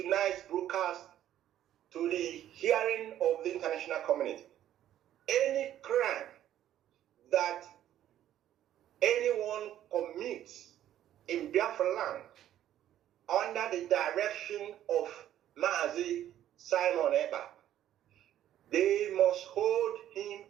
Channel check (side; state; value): left; quieter; 11.8 dB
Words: broadcast to the hearing of the international community. Any crime that anyone commits in Biafra land under the direction of Mazi Simon Eba, they must hold him